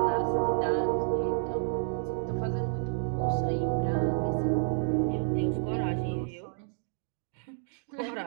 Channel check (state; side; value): silent; left; digital silence